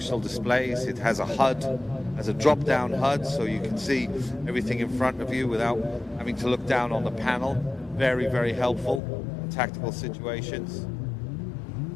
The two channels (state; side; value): drops out; right; at 9.0 s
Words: displays. It has a HUD, has a drop-down HUD, so you can see everything in front of you without having to look down on the panel. Very, very helpful in tactical situations.